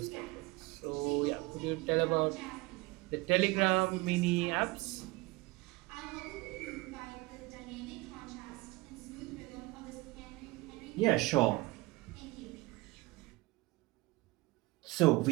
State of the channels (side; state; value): left; quieter; 22.4 dB